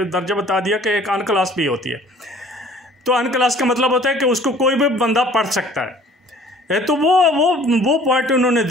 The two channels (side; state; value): both; normal; correlation 0.52